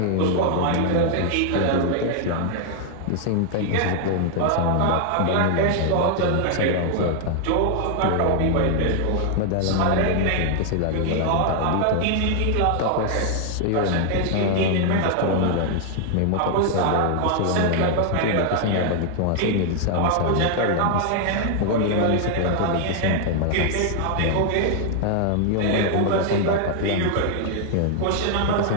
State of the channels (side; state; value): both; different; correlation 0.00